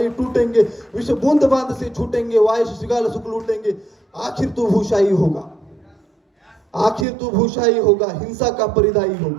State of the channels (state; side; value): drops out; left; at 7.1 s